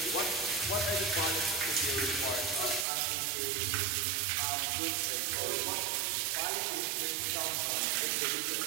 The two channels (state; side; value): drops out; left; at 2.9 s